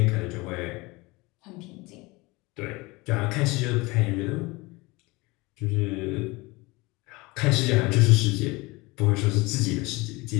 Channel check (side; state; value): right; quieter; 23.7 dB